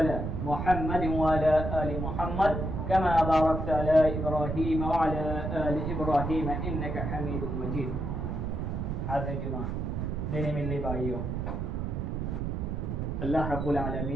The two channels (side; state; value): right; noise; rumble, 2 dB below the sound